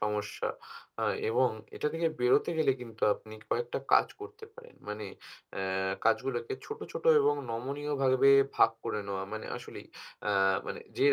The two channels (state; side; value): identical; both; correlation 1.00